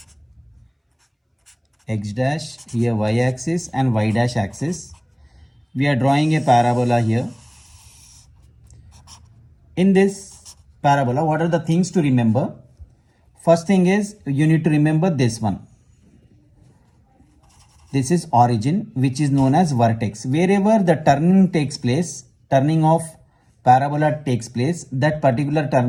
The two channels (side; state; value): both; identical; correlation 1.00